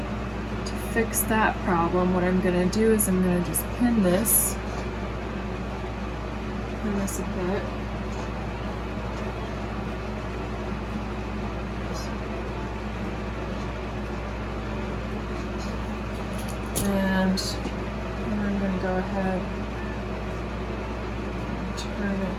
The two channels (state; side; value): identical; both; correlation 1.00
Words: to fix that problem, what I'm going to do is I'm going to just pin this a bit. And I'm going to go ahead and turn